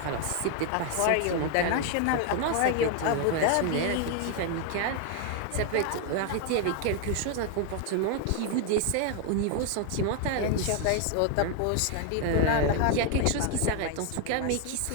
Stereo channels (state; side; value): different; both; correlation 0.01